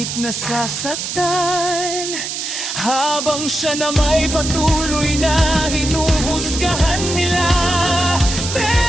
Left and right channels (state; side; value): noise; right; hiss, 5 dB below the sound